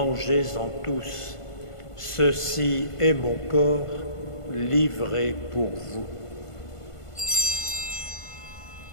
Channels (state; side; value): late; right; 1.5 ms